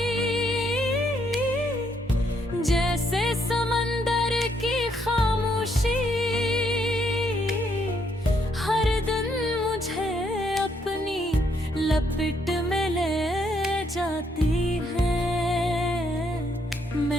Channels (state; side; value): normal; both; correlation 0.73